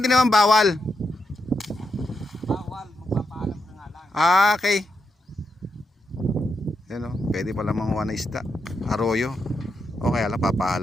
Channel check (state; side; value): normal; both; correlation 0.84